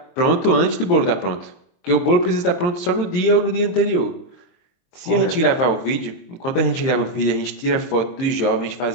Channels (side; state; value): right; late; 23 ms